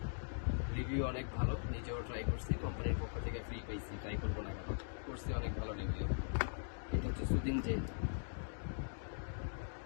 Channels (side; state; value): right; silent; digital silence